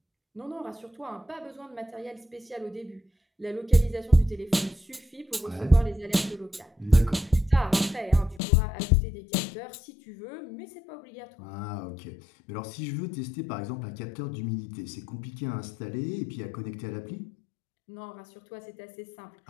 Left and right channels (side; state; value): right; drops out; at 8.4 s